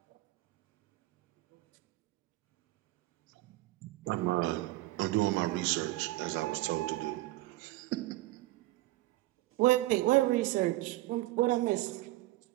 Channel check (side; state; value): left; quieter; 18.0 dB